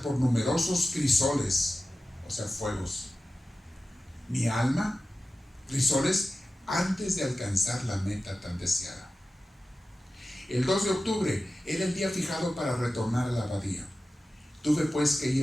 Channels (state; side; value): normal; both; correlation 0.94